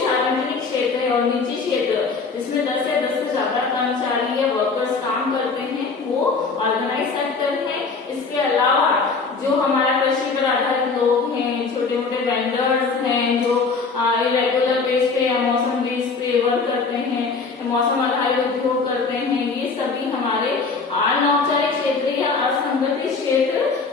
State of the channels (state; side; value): quieter; right; 4.6 dB